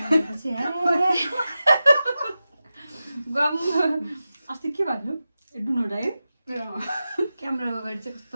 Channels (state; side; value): inverted; both; correlation -0.93